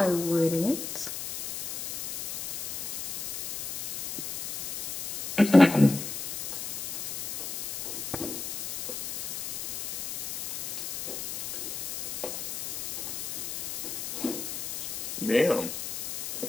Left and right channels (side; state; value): left; noise; hiss, 4 dB below the sound